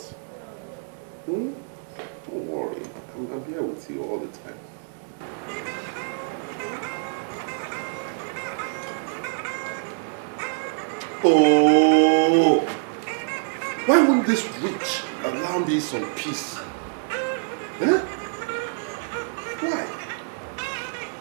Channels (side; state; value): left; silent; digital silence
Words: Don't worry. I'm here with you all the time. Oh! Why won't this witch allow me some peace? Huh? Why?